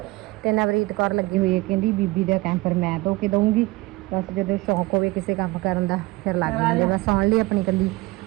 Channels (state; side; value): quieter; left; 21.0 dB